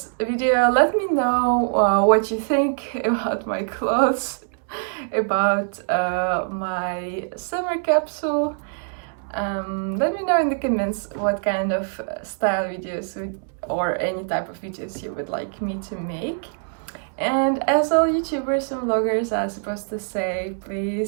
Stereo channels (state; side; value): silent; left; digital silence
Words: Let me know what you think about my clothes, about my summer capsule. Let me know in the comments what kind of style videos or any type of videos you would like me to make. And as all YouTubers and vloggers are supposed to say,